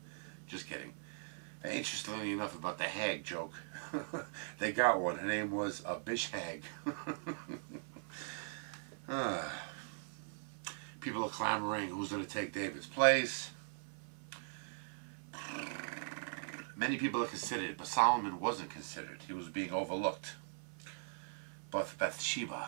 Just kidding. Interestingly enough, about the hag joke, they got one. Her name was a bish hag. People are clamoring who's going to take David's place. Many people are considered, but Solomon wasn't considered. He was being overlooked. But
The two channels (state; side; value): silent; left; 51 dB below the other